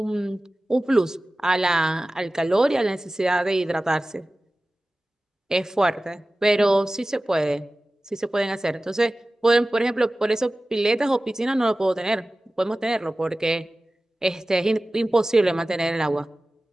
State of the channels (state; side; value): normal; both; correlation 0.97